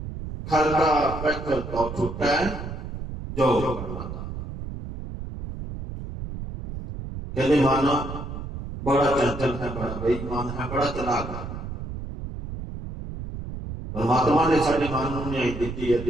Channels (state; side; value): noise; right; rumble, 8 dB below the sound